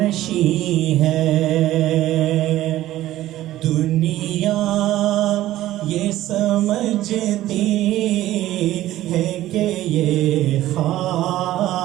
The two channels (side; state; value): left; quieter; 14.7 dB